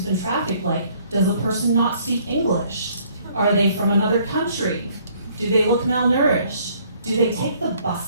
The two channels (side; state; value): both; inverted; correlation -0.62